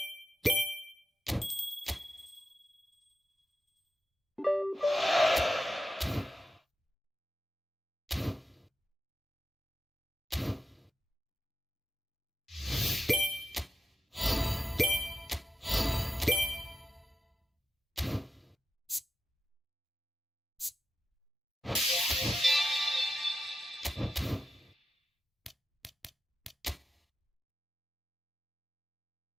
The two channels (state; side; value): normal; both; correlation 0.90